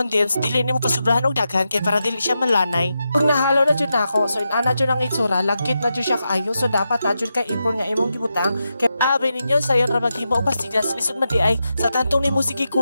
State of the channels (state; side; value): inverted; both; correlation -0.88